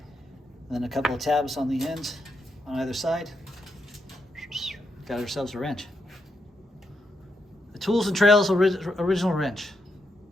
And then a couple of tabs on the ends on either side. Got ourselves a wrench. The Tools and Trails original wrench.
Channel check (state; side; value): normal; both; correlation 0.81